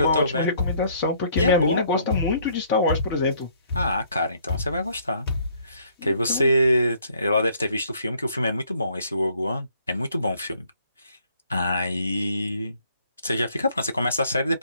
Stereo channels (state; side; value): inverted; both; correlation -0.64